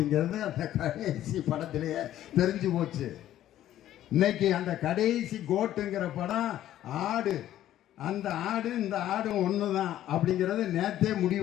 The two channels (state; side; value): quieter; right; 12.6 dB